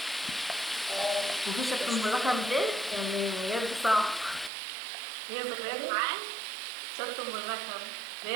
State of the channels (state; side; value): drops out; left; at 4.5 s